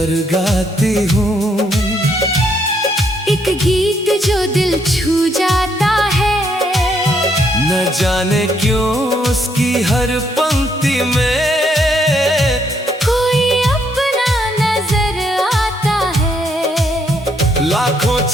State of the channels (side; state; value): both; normal; correlation 0.72